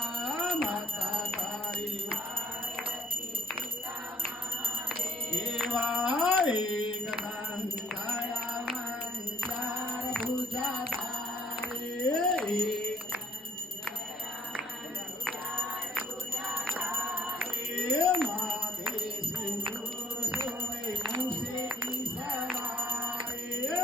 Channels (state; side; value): normal; both; correlation 0.61